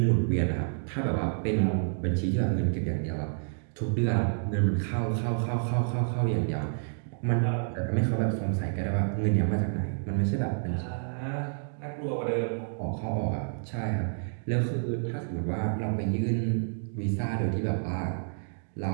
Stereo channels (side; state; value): left; silent; digital silence